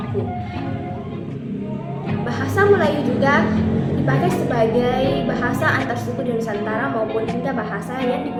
Bahasa Melayu juga dipakai sebagai bahasa antar suku di Nusantara maupun hingga bahasa yang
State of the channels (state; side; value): identical; both; correlation 1.00